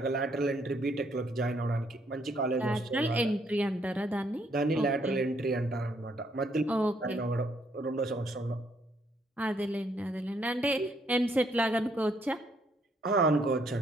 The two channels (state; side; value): normal; both; correlation 0.70